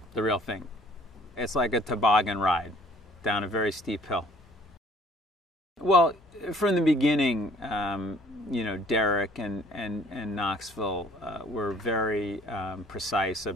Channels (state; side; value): normal; both; correlation 0.57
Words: the real thing. It's like a toboggan ride down a very steep hill. Well, from the beginning, Derek and Knoxville were very precise